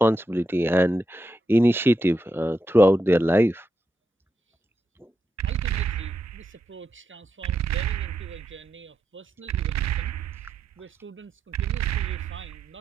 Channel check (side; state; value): both; normal; correlation 0.85